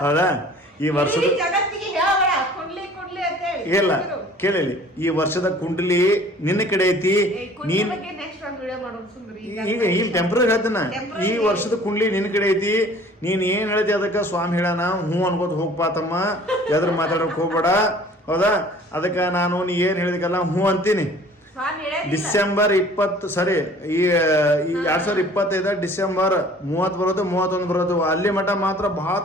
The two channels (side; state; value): both; normal; correlation 0.50